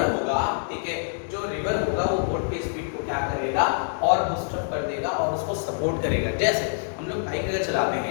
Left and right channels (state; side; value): silent; right; digital silence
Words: होगा, ठीक है, जो रिवर होगा वो बोट के स्पीड को क्या करेगा, और बूस्ट अप कर देगा और उसको सपोर्ट करेगा। जैसे हम लोग बाइक अगर चलाते